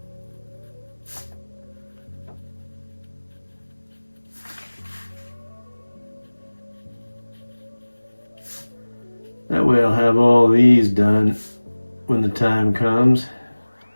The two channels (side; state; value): both; inverted; correlation -1.00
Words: That way I'll have all these done when the time comes.